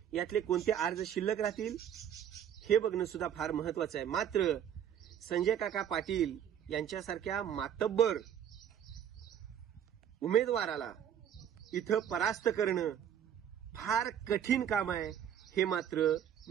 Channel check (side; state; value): left; quieter; 9.4 dB